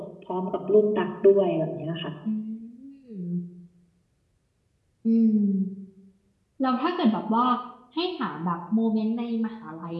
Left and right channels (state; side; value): identical; both; correlation 1.00